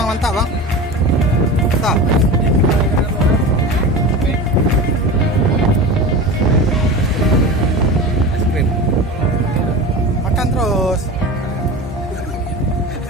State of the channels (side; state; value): both; normal; correlation 0.31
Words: Mantap bang? Mantap. Es krim. Makan terus.